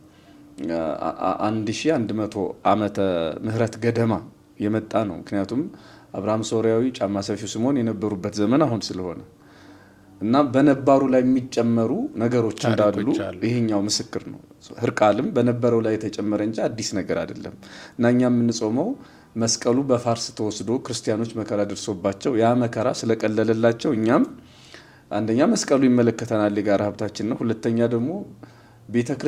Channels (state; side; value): identical; both; correlation 1.00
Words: ዓመተ ምህረት ገደማ የመጣ ነው። ምክንያቱም አብርሃም ሶርያዊ፣ ጫማ ሰፊው ስምዖን የነበሩበት ዘመን አሁን ስለሆነ እና በነባሩ ላይ የሚጨመሩ ነገሮች እንዳሉ ይሄኛው ምስክር ነው። ህርቃልም በነበረው ላይ የተጨመረ እንጂ አዲስ ነገር አይደለም እና እኛ የምንጾመው መስቀሉ በፋርስ ተወስዶ ክርስቲያኖች መከራ ደርሶባቸው ያ መከራ ስለቀለለላቸው እኛም አንደኛ መስቀሉ ይመለከተናል፣ የጋራ ሀብታችን ነው። ሁለተኛ ደግሞ ቤተ